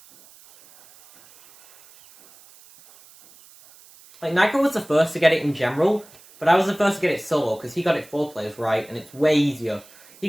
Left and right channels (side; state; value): right; noise; hiss, 25 dB below the sound